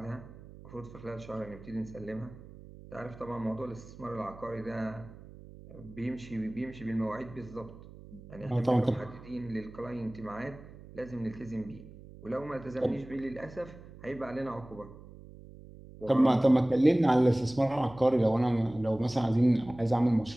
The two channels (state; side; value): noise; right; hum, 18 dB below the sound